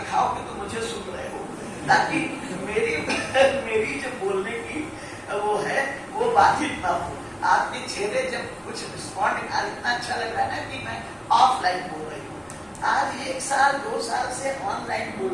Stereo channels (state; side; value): identical; both; correlation 1.00